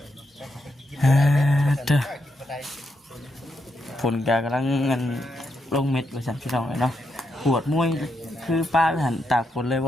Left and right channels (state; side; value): normal; both; correlation 0.82